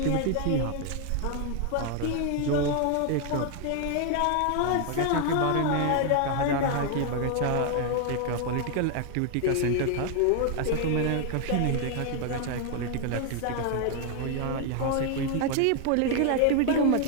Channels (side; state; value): both; different; correlation 0.00